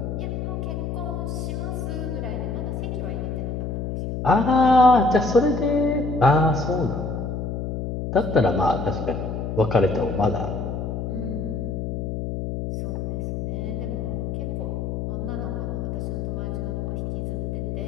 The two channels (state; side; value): noise; left; hum, 3 dB below the sound